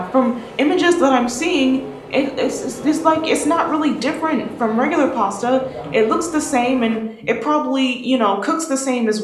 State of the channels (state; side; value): identical; both; correlation 1.00